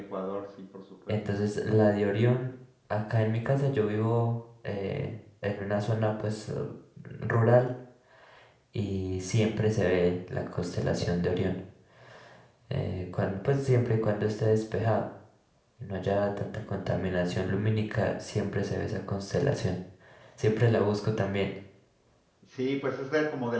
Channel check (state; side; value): identical; both; correlation 1.00